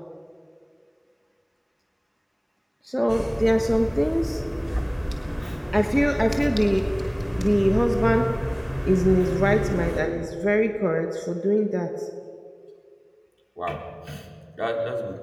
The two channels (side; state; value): both; identical; correlation 1.00